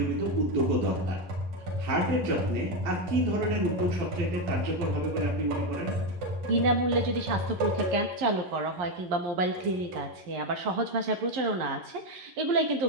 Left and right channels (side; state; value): left; late; 11 ms